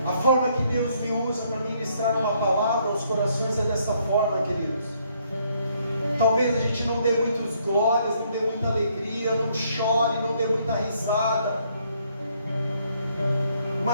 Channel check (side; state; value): both; inverted; correlation -0.69